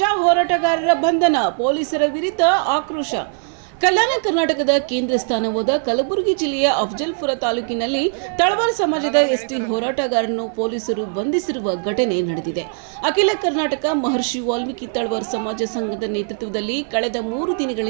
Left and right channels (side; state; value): left; silent; 57 dB below the other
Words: ಹೋರಾಟಗಾರರ ಬಂಧನ, ಪೊಲೀಸರ ವಿರುದ್ಧ ಆಕ್ರೋಶ. ಕಲ್ಯಾಣ ಕರ್ನಾಟಕದ ಕೇಂದ್ರ ಸ್ಥಾನವಾದ ಕಲಬುರಗಿ ಜಿಲ್ಲೆಯ ಅಫಜಲ್ಪುರ ತಾಲೂಕಿನಲ್ಲಿ ತಳವಾರ್ ಸಮಾಜದ ಎಸ್ಟಿ ಹೋರಾಟಗಾರರನ್ನು ಪೊಲೀಸರು ಬಂಧಿಸಿರುವ ಘಟನೆ ನಡೆದಿದೆ. ಅಖಿಲ ಕರ್ನಾಟಕ ಮಹರ್ಷಿ ವಾಲ್ಮೀಕಿ ತಳವಾರ್ ಸಮಾಜ ಸಂಘದ ನೇತೃತ್ವದಲ್ಲಿ ಕಳೆದ 3